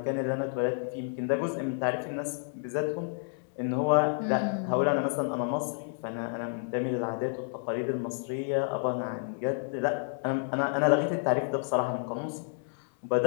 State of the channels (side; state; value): right; silent; digital silence